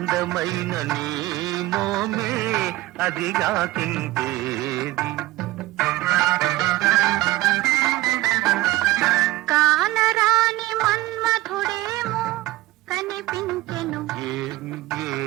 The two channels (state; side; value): quieter; left; 17.7 dB